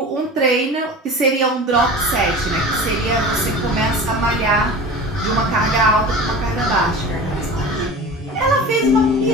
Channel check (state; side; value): normal; both; correlation 0.35